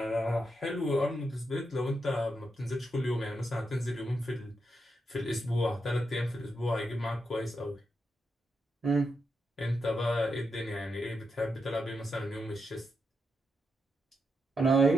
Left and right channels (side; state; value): both; normal; correlation 0.84